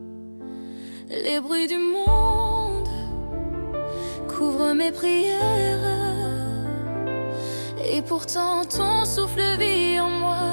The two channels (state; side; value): inverted; both; correlation -1.00